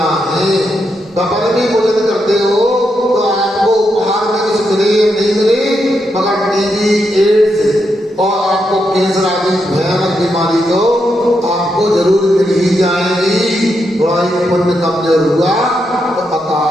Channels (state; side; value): normal; both; correlation 0.82